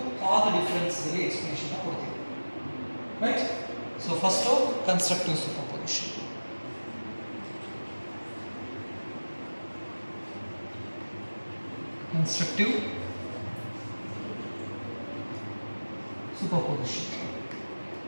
path difference ಗೆ ಎಕ್ಸ್ಪ್ಲನೇಷನ್ ಕೊಡ್ತೀವಿ. Right? So first of constructive superposition. Constructive superposition.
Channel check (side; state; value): both; inverted; correlation -1.00